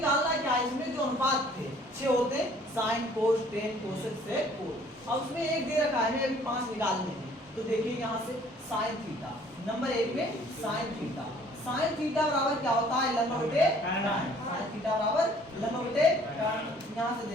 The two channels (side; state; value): both; normal; correlation 0.57